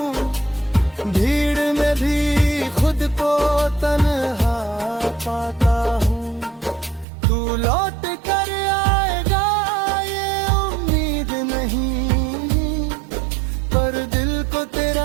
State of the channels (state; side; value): drops out; left; at 7.1 s